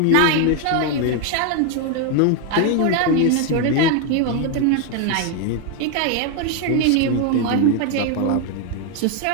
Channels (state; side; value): different; both; correlation 0.01